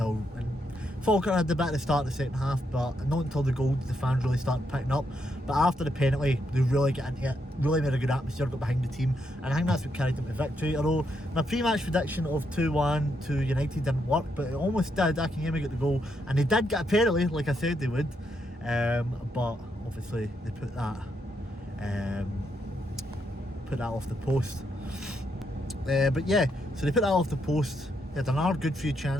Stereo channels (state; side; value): normal; both; correlation 0.79